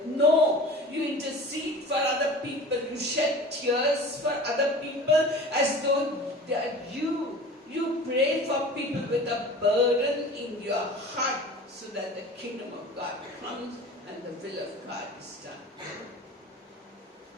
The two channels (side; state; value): both; normal; correlation 0.39